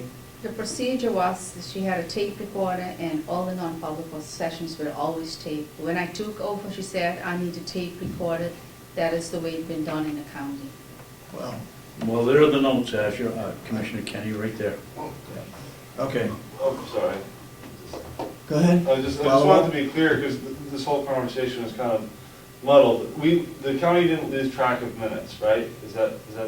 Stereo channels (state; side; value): identical; both; correlation 1.00